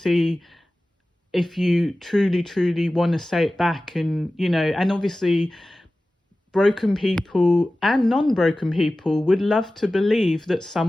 if you truly, truly want to say it back. And obviously broken people and non-broken people would love to believe that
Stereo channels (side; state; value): both; normal; correlation 0.96